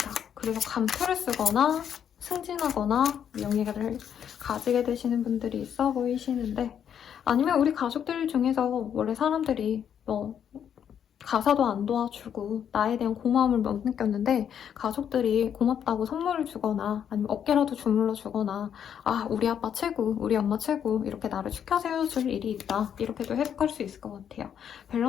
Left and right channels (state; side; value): quieter; right; 8.7 dB